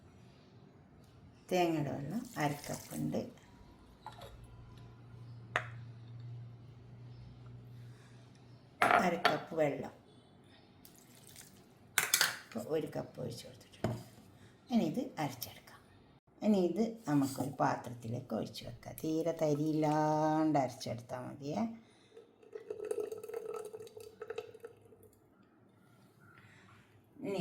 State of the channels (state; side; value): identical; both; correlation 1.00